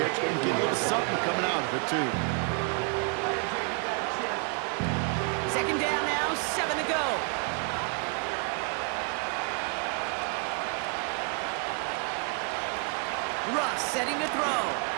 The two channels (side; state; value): left; quieter; 38.9 dB